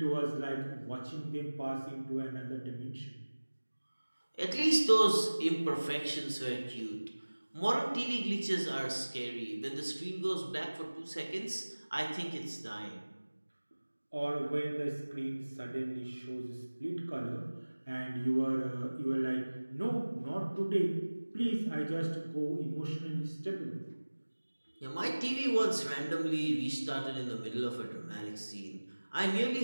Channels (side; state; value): both; inverted; correlation -1.00